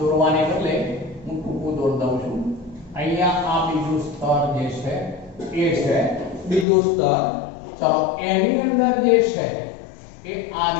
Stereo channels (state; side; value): drops out; right; at 6.7 s